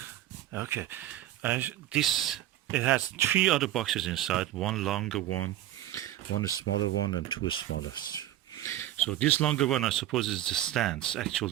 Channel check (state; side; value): quieter; left; 13.5 dB